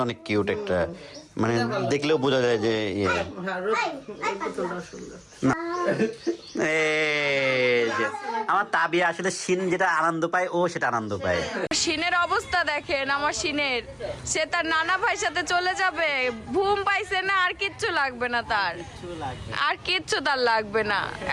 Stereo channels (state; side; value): identical; both; correlation 1.00